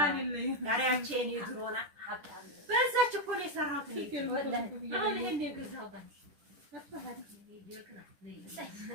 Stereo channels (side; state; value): left; late; 10 ms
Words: በዛች እኮ ነው የሰራሁት አሁን ይሄን የገዛሁት